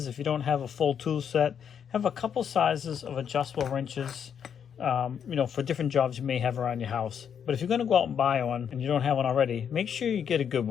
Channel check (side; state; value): right; quieter; 7.9 dB